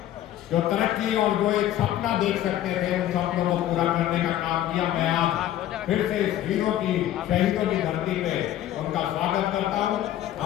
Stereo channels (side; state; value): right; quieter; 12.6 dB